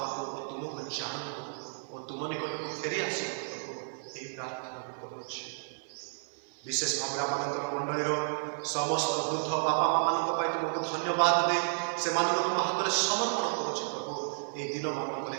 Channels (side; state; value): left; silent; 56 dB below the other